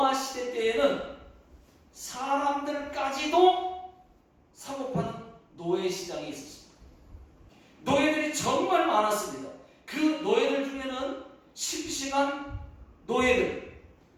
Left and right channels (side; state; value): both; identical; correlation 1.00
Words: 시대 때에는 사람들까지도 사고 파는 노예 시장이 있었습니다. 노예들이 정말 많았습니다. 그 노예들 중에는 심심한 노예들,